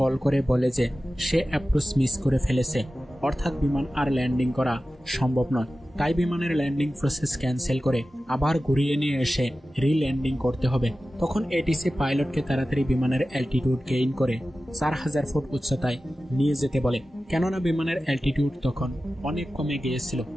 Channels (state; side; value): normal; both; correlation 0.95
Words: কল করে বলে যে সে অ্যাপ্রোচ মিস করে ফেলেছে অর্থাৎ বিমান আর ল্যান্ডিং করা সম্ভব নয়। তাই বিমানের ল্যান্ডিং প্রসেস ক্যান্সেল করে আবার ঘুরিয়ে নিয়ে এসে রিল্যান্ডিং করতে হবে। তখন এটিসি পাইলটকে তাড়াতাড়ি বিমানের অ্যালটিটিউড গেইন করে 4000 ফুট উচ্চতায় নিয়ে যেতে বলে, কেননা বিমানের অ্যালটিটিউড তখন অনেক কমে গিয়েছিল।